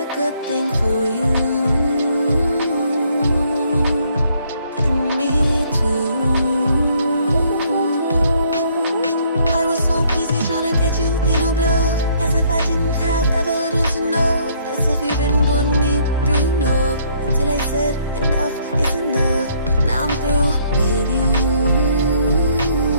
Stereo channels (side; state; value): both; inverted; correlation -0.65